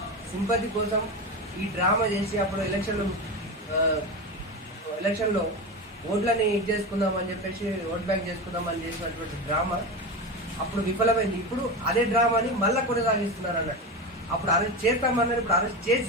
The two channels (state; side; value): normal; both; correlation 0.21